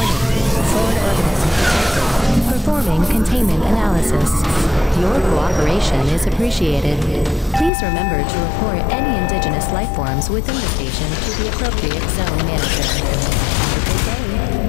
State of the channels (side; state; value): right; drops out; at 7.7 s